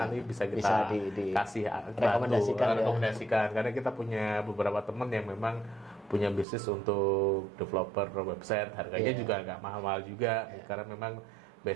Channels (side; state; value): left; drops out; at 6.5 s